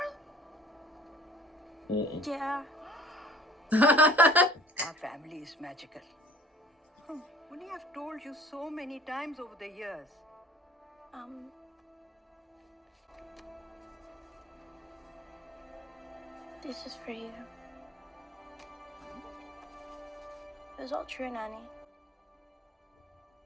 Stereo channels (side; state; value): both; normal; correlation 0.50